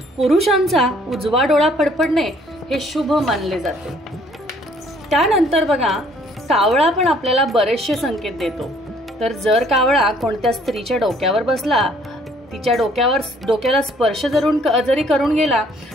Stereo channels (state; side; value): normal; both; correlation 0.60